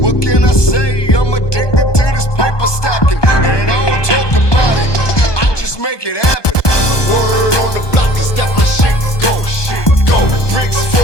can I say? I'm addicted to this paper stacking. And I don't talk about it. I just make it happen.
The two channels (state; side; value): late; right; 1.2 ms